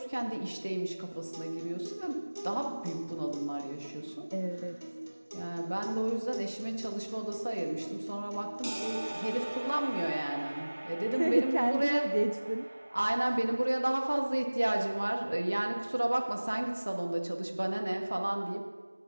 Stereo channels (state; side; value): inverted; both; correlation -1.00